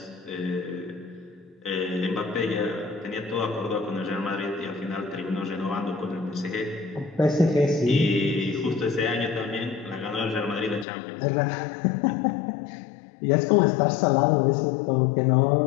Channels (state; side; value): drops out; right; at 10.9 s